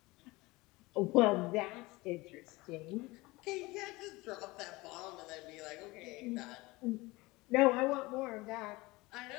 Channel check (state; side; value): quieter; right; 22.0 dB